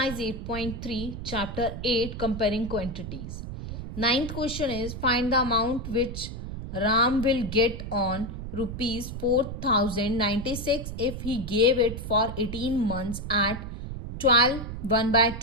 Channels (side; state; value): right; noise; rumble, 7 dB below the sound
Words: 8.3 chapter 8 comparing quantities. Ninth question is find the amount which Ram will get on rupees 4096 if he gave it for 18 months at 12